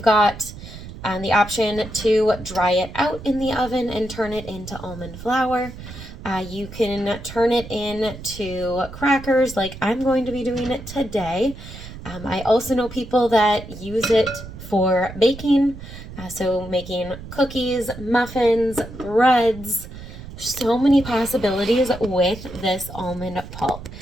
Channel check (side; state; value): right; noise; rumble, 13 dB below the sound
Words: got the option to dry it out in the oven and turn it into almond flour. You can turn it into crackers like I'm going to be doing it today. I also know people that use it for baking, so making cookies, muffins, breads. So many possibilities with this almond pulp.